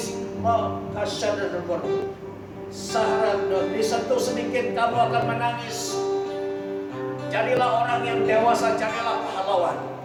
disentuh sedikit kamu akan menangis. Jadilah orang yang dewasa, jadilah pahlawan.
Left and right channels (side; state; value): both; identical; correlation 1.00